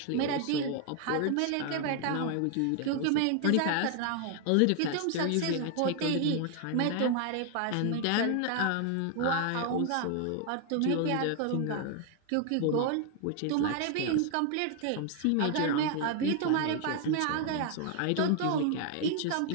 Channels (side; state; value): both; different; correlation 0.00